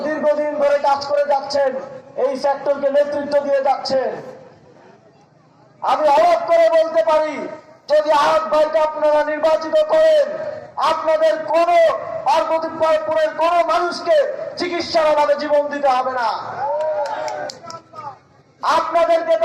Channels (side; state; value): both; identical; correlation 1.00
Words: দীর্ঘদিন ধরে কাজ করে যাচ্ছেন, এই সেক্টরকে নেতৃত্ব দিয়ে যাচ্ছেন। আমি অবাক করে বলতে পারি, যদি আহাদ ভাইকে আপনারা নির্বাচিত করেন, আপনাদের কোন পার্বতীপুরের কোন মানুষকে চিকিৎসার অভাবে জীবন দিতে হবে না, আপনাদেরকে